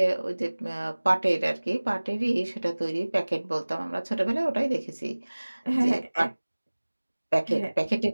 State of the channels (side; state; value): both; inverted; correlation -1.00